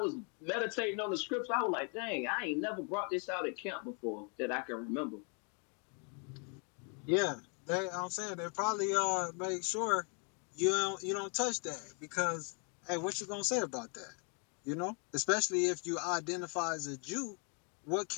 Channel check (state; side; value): quieter; right; 38.1 dB